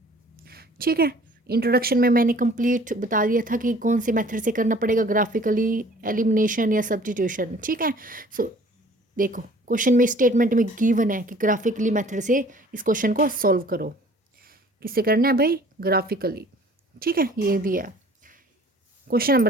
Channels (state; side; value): normal; both; correlation 0.52